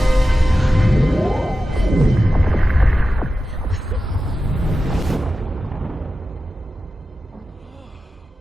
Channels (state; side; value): normal; both; correlation 0.93